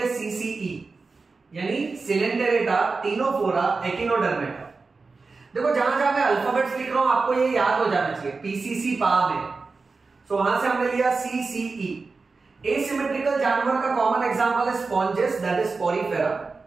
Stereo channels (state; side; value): quieter; left; 4.2 dB